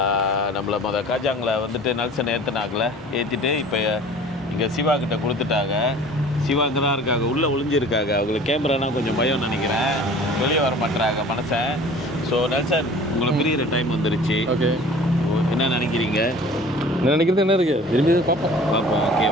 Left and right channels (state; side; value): normal; both; correlation 0.46